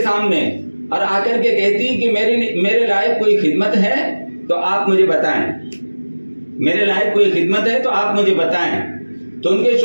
سامنے اور آ کر کے کہتی کہ میرے لائق کوئی خدمت ہے تو آپ مجھے بتائیں، میرے لائق کوئی خدمت ہے تو آپ مجھے بتائیں۔ تو ان کے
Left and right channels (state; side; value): inverted; both; correlation -1.00